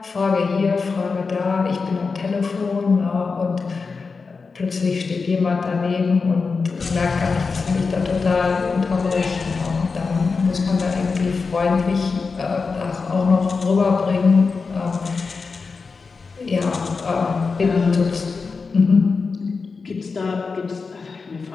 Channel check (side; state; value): right; quieter; 4.7 dB